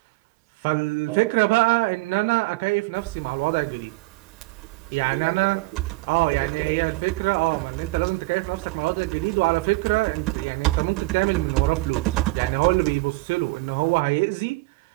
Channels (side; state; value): left; quieter; 23.0 dB